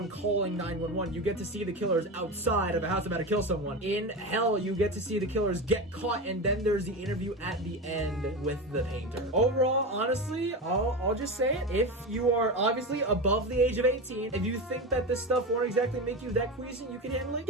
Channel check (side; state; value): both; normal; correlation 0.22